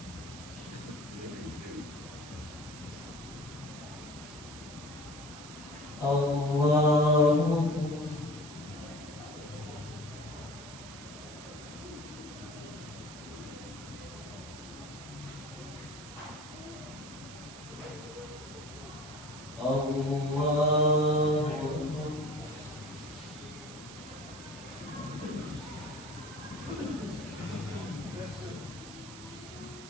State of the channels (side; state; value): right; noise; hiss, 15 dB below the sound